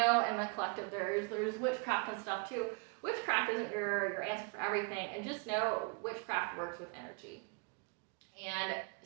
in the collective there's witchcraft and stuff too. Witchcraft isn't your answer for everything, and just know witchcraft works with energy. And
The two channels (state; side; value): quieter; left; 33.9 dB